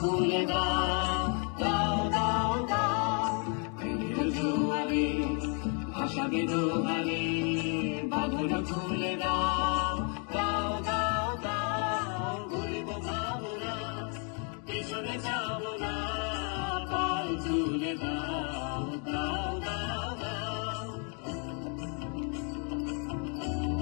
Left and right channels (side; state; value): right; quieter; 38.7 dB